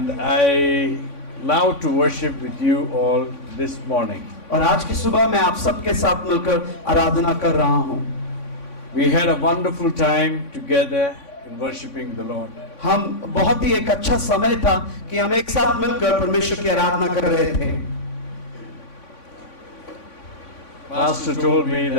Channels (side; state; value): right; late; 3.5 ms